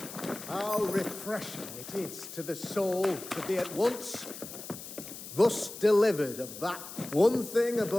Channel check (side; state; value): left; noise; hiss, 12 dB below the sound